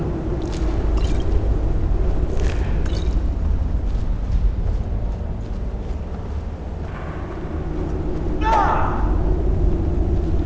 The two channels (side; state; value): both; identical; correlation 1.00